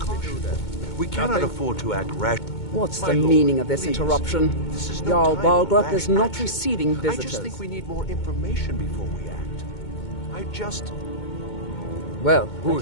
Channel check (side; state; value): right; late; 2.2 ms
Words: We cannot afford to act rash. What's My the lord, meaning of this please. interruption? This is no Jarl time for Balgruuf rash is not action. receiving I visitors. just think we need more information before we act. Well, that Who's